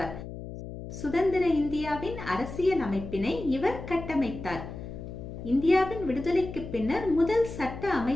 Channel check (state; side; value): noise; left; hum, 10 dB below the sound